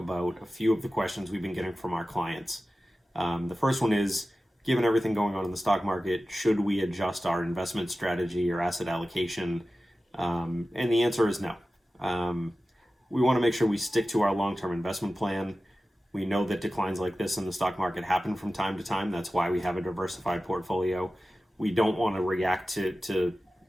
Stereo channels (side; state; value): both; normal; correlation 0.95